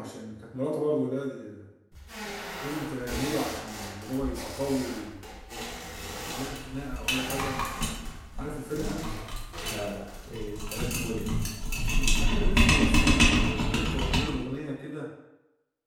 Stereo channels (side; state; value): both; identical; correlation 1.00